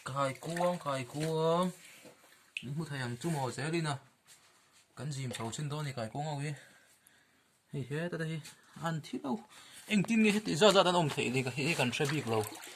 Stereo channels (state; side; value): identical; both; correlation 1.00